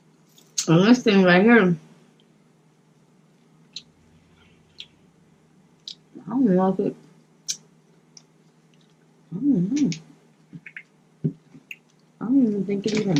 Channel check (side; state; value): both; identical; correlation 1.00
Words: And this thing right here, I don't know if it, I don't know. I don't even think it